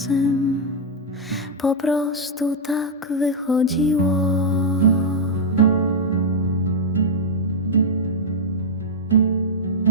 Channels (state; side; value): normal; both; correlation -0.03